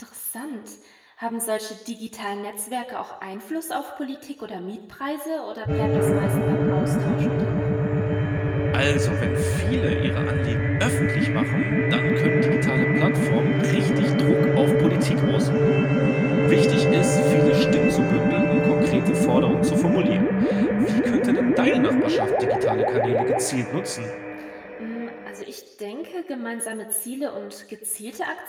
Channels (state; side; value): identical; both; correlation 1.00